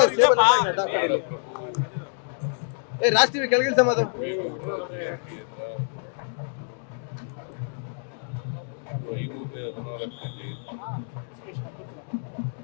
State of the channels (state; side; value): silent; right; digital silence